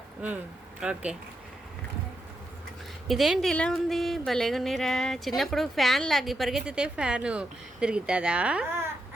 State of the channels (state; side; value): normal; both; correlation 0.84